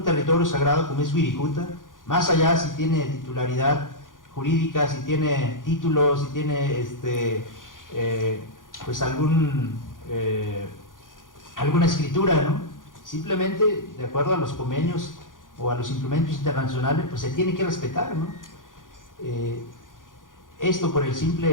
territorio sagrado como es Wirikuta, más allá si tiene titularidad jurídica, si tiene títulos, si tiene pues alguna escritura, ¿no? Simplemente de acuerdo a los convenios o a los instrumentos internacionales, pues se tiene que respetar, ¿no? Esto por el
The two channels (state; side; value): late; right; 0.89 ms